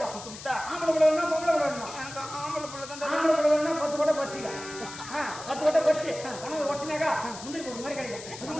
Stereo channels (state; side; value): noise; left; hiss, 13 dB below the sound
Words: ஆம்பளை பிள்ளை வேணா பொம்பளை பிள்ளை வேணுமா ஆம்பளை பிள்ளை தான் 10 கொட்டை பறிச்சிக்க 10 கொட்டை பறிச்சு உனக்கு ஒட்டினாக்கா முந்திரி ஒரு மாதிரி கிடைக்கும்